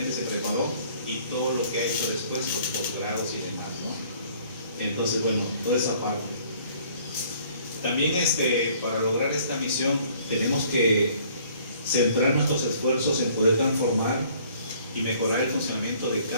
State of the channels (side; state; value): both; inverted; correlation -0.58